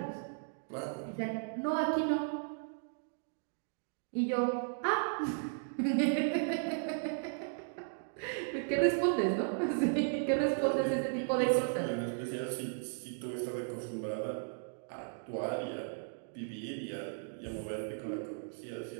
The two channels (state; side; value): silent; left; digital silence